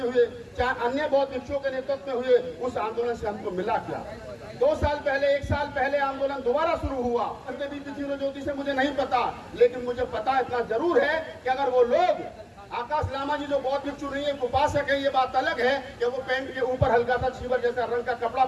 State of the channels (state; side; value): identical; both; correlation 1.00